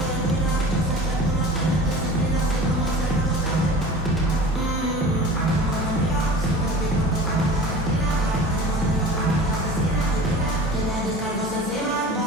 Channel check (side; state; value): both; normal; correlation 0.39